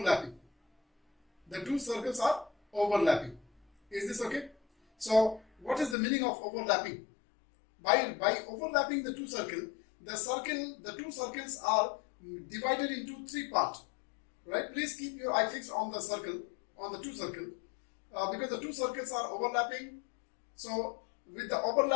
The two circles are overlapping. Is this okay? So, what is the meaning of overlapping? By overlapping the two circles, the two circles are divided into three parts. Right? Please keep your eye fixed on the circle, on the two circles, because the two circles are overlapping. So, with the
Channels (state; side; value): drops out; right; at 6.0 s